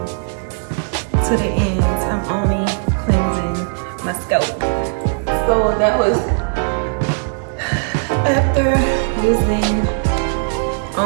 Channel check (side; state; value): left; silent; digital silence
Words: to the ends. I'm only cleansing my scalp. So that was after using